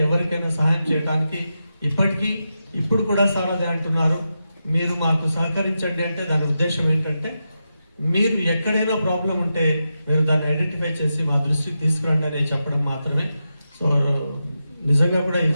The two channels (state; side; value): inverted; both; correlation -0.89